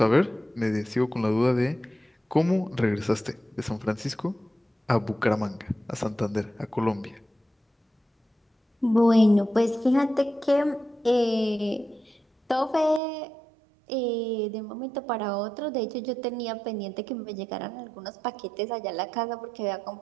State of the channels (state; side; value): drops out; left; at 13.0 s